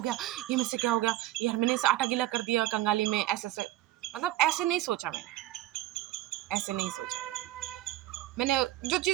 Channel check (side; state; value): left; quieter; 15.4 dB